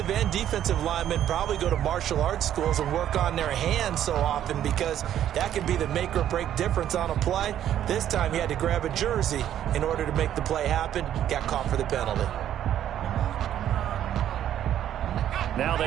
and defensive linemen probably go to martial arts schools and work on their hands so often, because that can be the make or break difference on a play. This time he had to grab a jersey in order to make the play happen. Got caught for the penalty. Now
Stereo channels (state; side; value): quieter; left; 11.0 dB